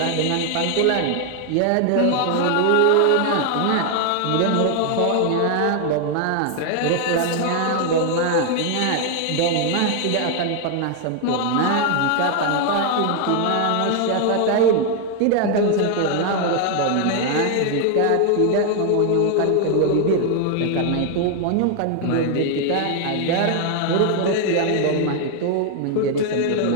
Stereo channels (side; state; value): both; different; correlation 0.00